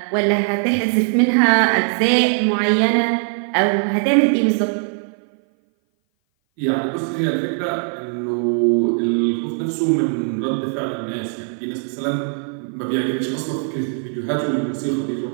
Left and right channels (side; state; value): left; silent; 58 dB below the other